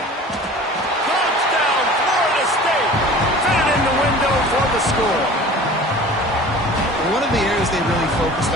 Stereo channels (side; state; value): both; normal; correlation 0.42